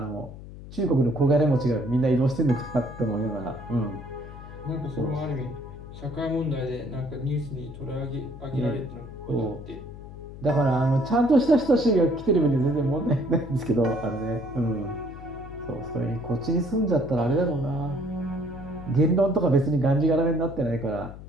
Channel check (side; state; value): left; noise; hum, 14 dB below the sound